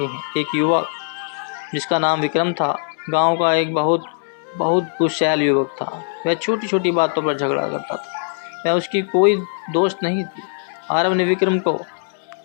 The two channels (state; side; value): silent; right; 65 dB below the other